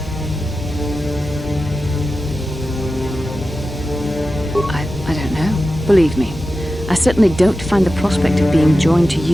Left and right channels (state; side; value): normal; both; correlation 0.93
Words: I don't know. Believe me, I certainly don't find the prospect of being joined to